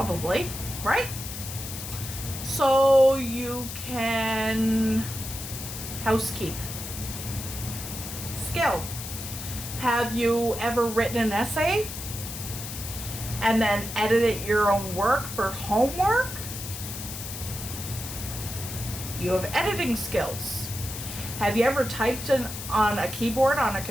right? So you can housekeep. Skill. Have you ever written an essay and then edited your own work for homework? You have editing skills. Have you ever typed on a keyboard on a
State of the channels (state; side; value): noise; left; hiss, 8 dB below the sound